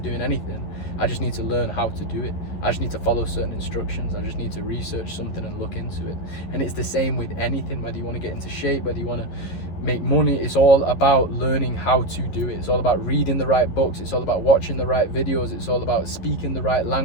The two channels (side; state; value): right; late; 11 ms